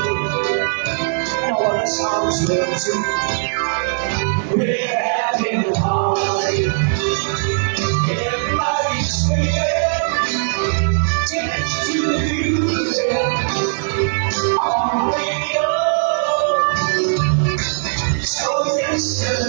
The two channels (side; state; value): left; silent; 67 dB below the other